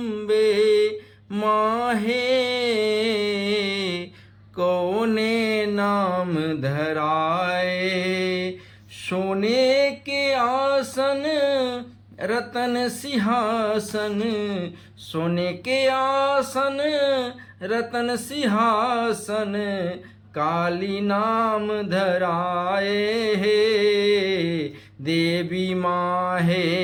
माँ है, कौन नाम धराए। सोने के आसन रतन सिंहासन, सोने के आसन रतन सिंहासन, काली नाम धराए है। देवी माँ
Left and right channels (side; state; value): both; identical; correlation 1.00